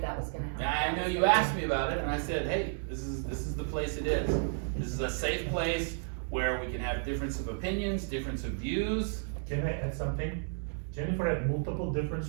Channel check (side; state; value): left; silent; digital silence